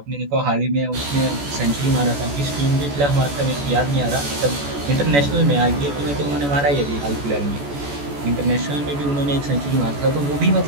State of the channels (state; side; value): late; left; 14 ms